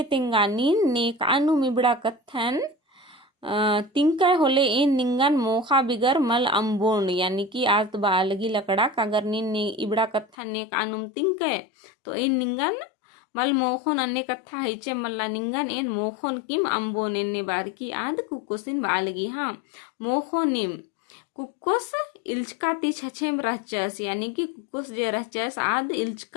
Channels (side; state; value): right; drops out; at 10.4 s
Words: तिंगा नीन ने कानू मिबड़ा कथन तिंका होले इन निंगन मोखा बिगर मल अम्बोन यानी कि आज बा लगी लकड़ा कागर नीन ने इबड़ा कथन ने कानुम तिंके तो इन निंगन मल मोखोन अन्य कथा हिचे मल्ला निंगन एन मोखोन किम अम्बोन एन्ने बार की आद कुकोसिन बालगी हाँ मोखोनिम कुकोस इल्चकाती छछेम रहचस यानी कि कुकोस जे रहचस आद